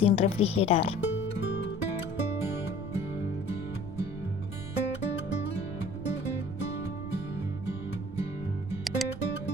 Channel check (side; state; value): right; noise; rumble, 12 dB below the sound